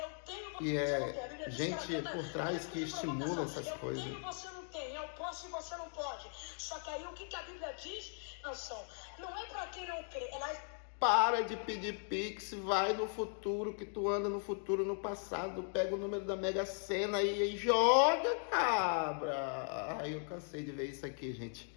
tenho, E você não tem. A Bíblia é diz que ela gente canta por trás que cânticos de estimula provocação. essas coisas. Eu tenho, você não tem. Eu posso e você não pode. Só que aí o que a Bíblia diz, Nação? Não é para quem não crê. Ela Para de pedir pix, vai no futuro, que tu anda no futuro, no passado, pega o número da Mega Sena e joga, cabra. Ai, eu cansei de ver isso aqui, gente.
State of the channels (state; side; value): silent; right; 52 dB below the other